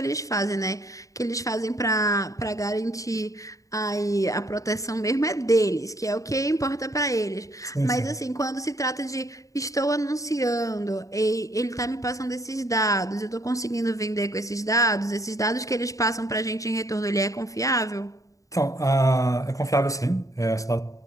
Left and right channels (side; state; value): right; late; 0.16 ms